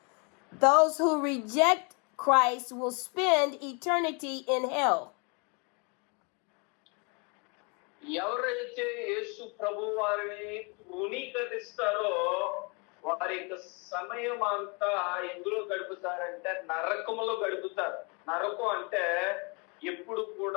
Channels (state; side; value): quieter; right; 33.2 dB